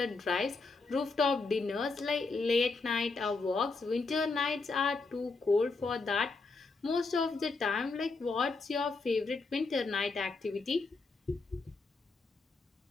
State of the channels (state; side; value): quieter; right; 4.0 dB